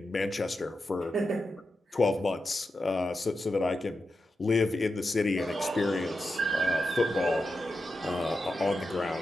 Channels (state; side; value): normal; both; correlation 0.89